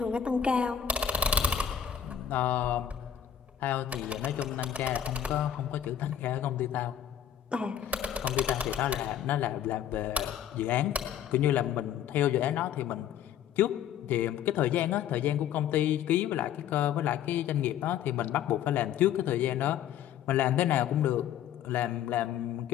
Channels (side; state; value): right; quieter; 9.6 dB